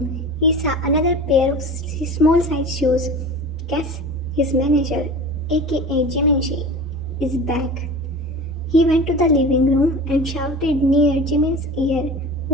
he saw another pair of small-sized shoes. Guess his manager, aka Jiminshi, is back. He went to the living room and shouted near Jimin's ear,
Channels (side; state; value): both; normal; correlation 0.35